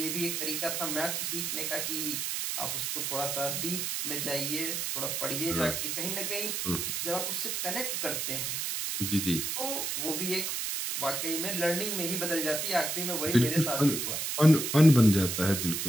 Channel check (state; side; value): noise; right; hiss, 1 dB below the sound